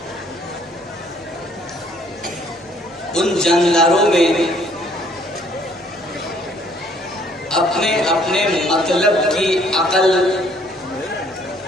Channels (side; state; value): both; normal; correlation 0.62